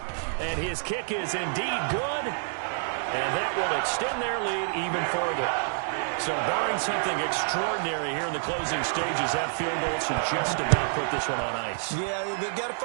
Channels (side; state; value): left; silent; digital silence